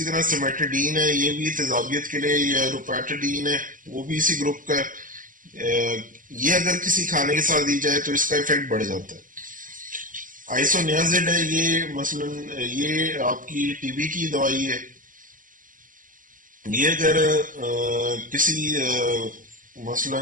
طرح سیمیٹڈین ہے، یہ بھی تیزابیت کے لیے، یا روپیٹڈین ہے وہ بھی اسی گروپ کا ہے، یہ اگر کسی کھانے کے ساتھ دی جائے تو اس کا ایفیکٹ بڑھ جاتا ہے. آئسونیازڈ ہے، یہ مثلا یہ آپ کی ٹی بی کی دوائی ہے، یہ اگر کسی مثلا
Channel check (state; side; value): late; left; 0.39 ms